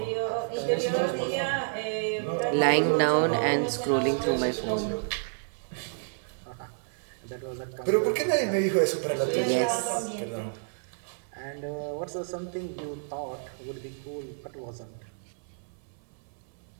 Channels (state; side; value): silent; left; 58 dB below the other